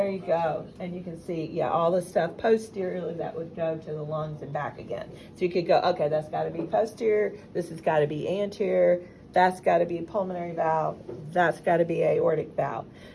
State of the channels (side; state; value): both; identical; correlation 1.00